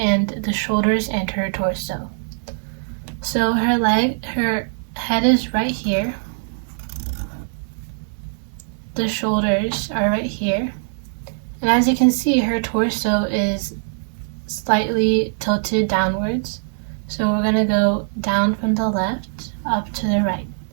the shoulders and her torso. So her head is right here. The shoulders are right here. And as you can see, her torso is slightly tilted downwards. So we're going to go down from the left up to the right.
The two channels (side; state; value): left; silent; digital silence